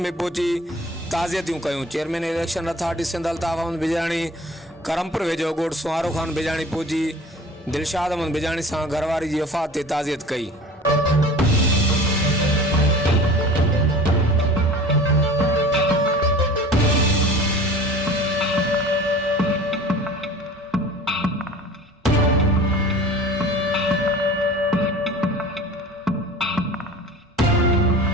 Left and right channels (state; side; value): normal; both; correlation 0.42